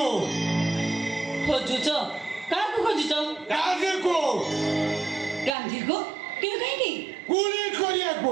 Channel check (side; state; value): left; drops out; at 5.6 s